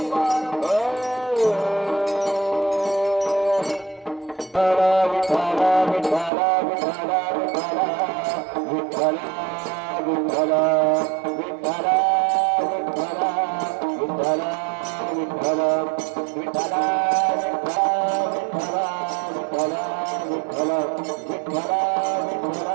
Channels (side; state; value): left; drops out; at 6.3 s